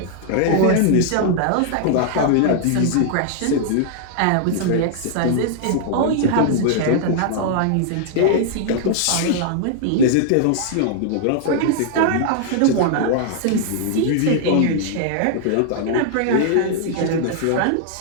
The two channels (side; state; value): both; different; correlation -0.01